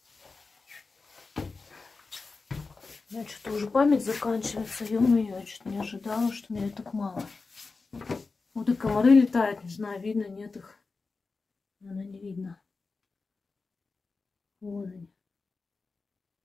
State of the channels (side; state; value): right; quieter; 4.1 dB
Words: У меня что-то уже память заканчивается. Ё-моё, я что-то не ожидала, что меня так мало. Вот и комары летают, не знаю, видно, нет их. Наверное, не видно. Вон они.